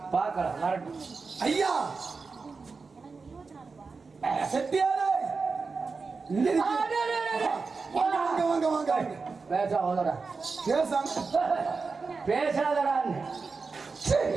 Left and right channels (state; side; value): quieter; left; 4.5 dB